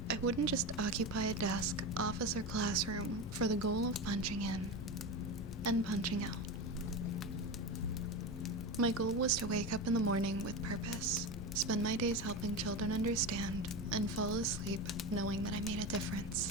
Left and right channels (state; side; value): normal; both; correlation 0.21